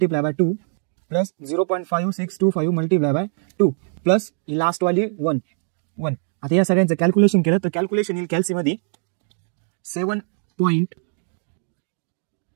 bye 2 plus 0.5625 multiply by 2 plus he last वाली 1. आता या सगळ्यांचं कॅल्क्युलेशन केलं तर कॅल्क्युलेशन येईल कॅल्सीमध्ये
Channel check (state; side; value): silent; left; 58 dB below the other